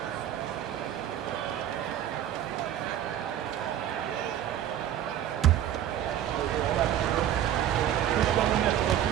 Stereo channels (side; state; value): left; quieter; 10.9 dB